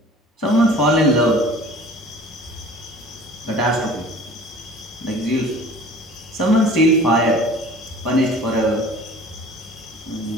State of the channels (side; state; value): both; normal; correlation 0.45